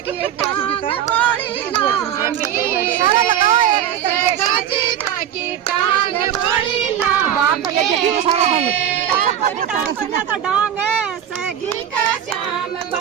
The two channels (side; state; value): left; quieter; 10.0 dB